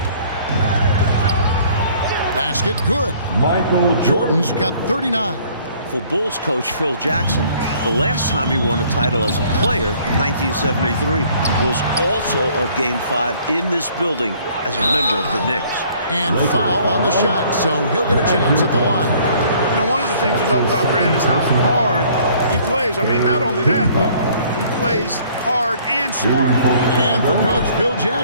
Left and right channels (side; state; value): both; inverted; correlation -0.58